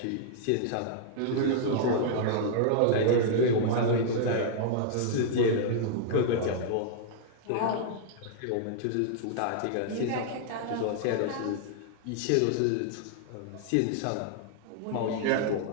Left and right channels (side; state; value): both; different; correlation -0.01